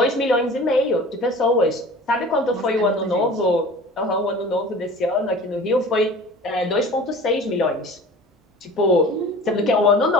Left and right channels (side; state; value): both; normal; correlation 0.42